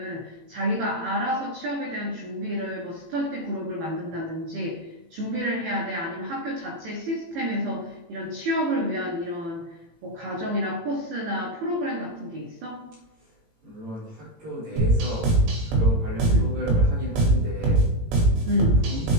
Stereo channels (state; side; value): late; left; 18 ms